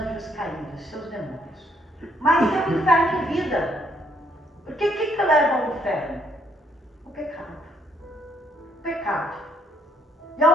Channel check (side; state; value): both; normal; correlation 0.69